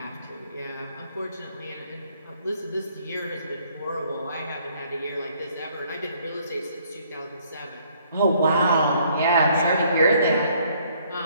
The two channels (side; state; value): both; inverted; correlation -0.64